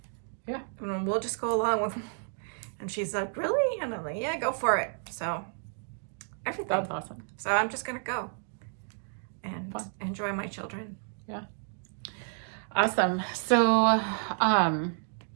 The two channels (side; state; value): left; silent; 57 dB below the other